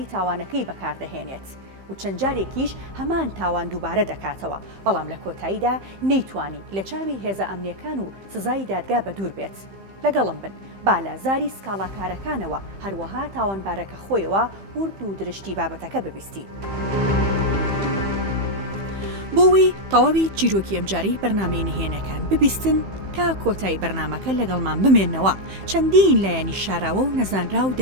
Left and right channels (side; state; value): left; late; 15 ms